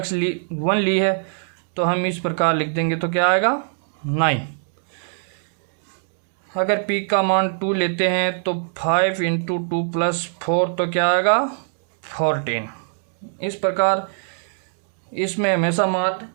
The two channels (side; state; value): left; silent; 64 dB below the other